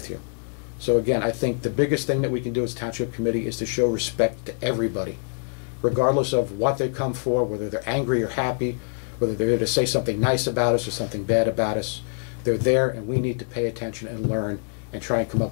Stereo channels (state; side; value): silent; right; 62 dB below the other